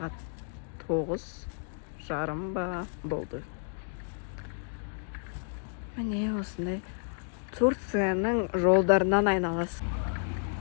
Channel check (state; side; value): silent; right; digital silence